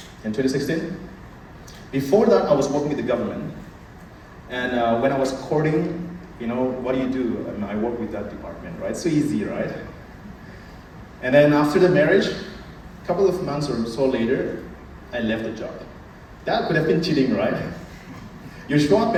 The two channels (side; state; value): both; identical; correlation 1.00